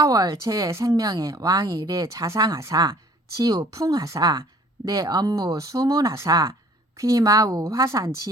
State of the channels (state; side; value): normal; both; correlation 0.54